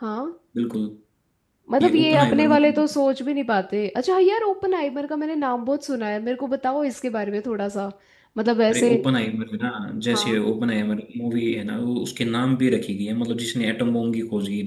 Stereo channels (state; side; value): identical; both; correlation 1.00